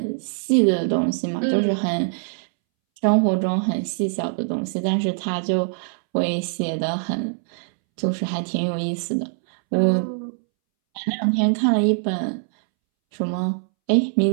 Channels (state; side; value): silent; left; 64 dB below the other